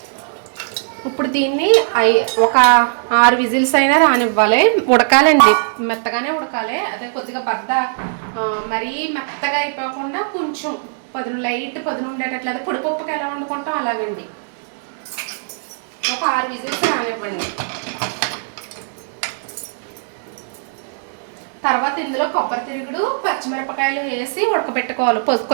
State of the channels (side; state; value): left; silent; digital silence